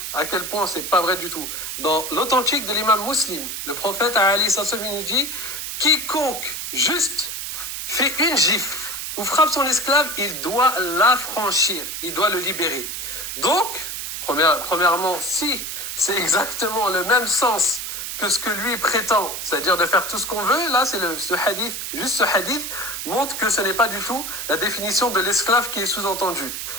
à quel point c'est pas vrai du tout. Dans l'authentique de l'imam Muslim, le prophète Ali Sassoumi nous dit quiconque juste fait une gifle ou frappe son esclave, il doit l'affranchir, il doit le libérer. Donc, premièrement, si c'est exactement le même sens que ce que lui prétend, c'est-à-dire de faire tout ce qu'on veut, là, c'est ce hadith, juste ce hadith montre que ce n'est pas du tout la définition de l'esclave qui est sous-entendue.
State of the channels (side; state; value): right; noise; hiss, 5 dB below the sound